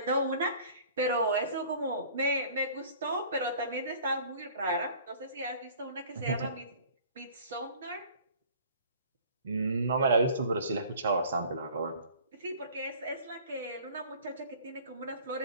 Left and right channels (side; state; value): both; inverted; correlation -0.49